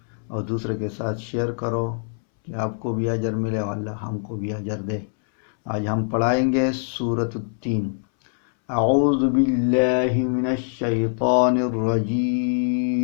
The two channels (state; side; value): silent; right; 63 dB below the other